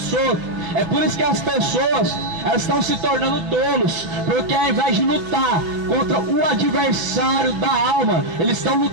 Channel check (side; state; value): left; late; 6.0 ms